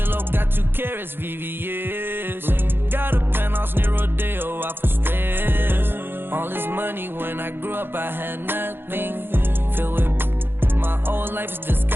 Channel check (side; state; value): left; late; 0.10 ms